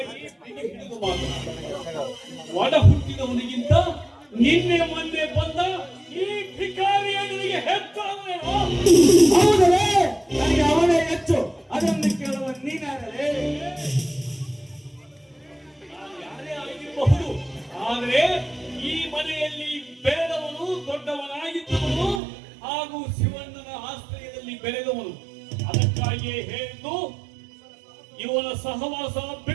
ಒಡ ಹುಟ್ಟಿದವನಿಗಿಂತ ನಿನ್ನೆ ಮೊನ್ನೆ ಬಂದ ಈ ಭಿಕಾರಿಯ ನಿನಗೆ ಹೆಚ್ಚಾಗುವೇನೋ? ಹೌದಲೇ, ನನಗೆ ಅವನೇ ಹೆಚ್ಚು. ಅದನ್ನು ಕೇಳುವ ನೀನಾದರೆ ಯಾರೇ ಆಗಿರಬಹುದು, ಆದರೆ ಈ ಮನೆಯಲ್ಲಿ ಬೆಳೆದವನು, ದೊಡ್ಡವನಾಗಿದ್ದವನು ಹಾಗೂ ಶಿವಣ್ಣನ ಆಶ್ರಯದಲ್ಲಿ ಬೆಳೆದವನು. ಅದಕ್ಕಾಗಿಯೇ ಹೇಳಿದ್ದು, ಇವನ ಸಹವಾಸ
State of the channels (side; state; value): left; drops out; at 22.2 s